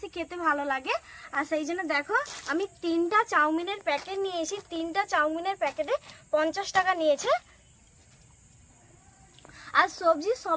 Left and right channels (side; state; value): both; identical; correlation 1.00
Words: খেতে ভালো লাগে। আর সেই জন্য দেখো আমি 3টা চাউমিনের প্যাকেট নিয়ে এসেছি। 3টা চাউমিনের প্যাকেটে 50 টাকা নিয়েছে। আর সবজি